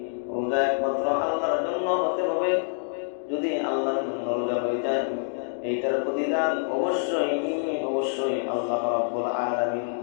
রোজা একমাত্র আল্লাহর জন্য হতে হবে। যদি আল্লাহর জন্য রোজা হয়ে যায়, এইটার প্রতিদান অবশ্যই আল্লাহ রাব্বুল আলামিন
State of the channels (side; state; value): right; silent; digital silence